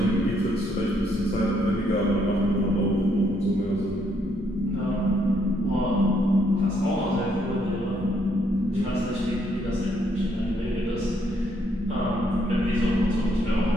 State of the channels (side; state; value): both; normal; correlation 0.71